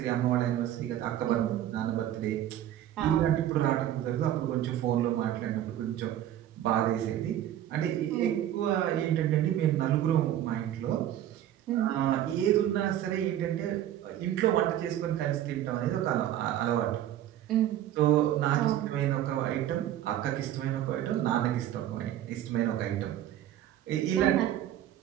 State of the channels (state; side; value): quieter; left; 12.0 dB